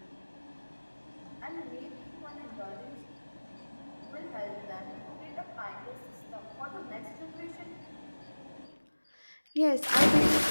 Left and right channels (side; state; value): both; inverted; correlation -1.00